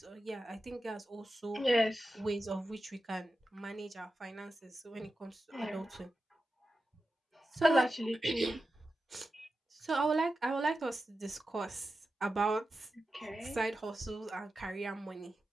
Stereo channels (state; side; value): normal; both; correlation 0.91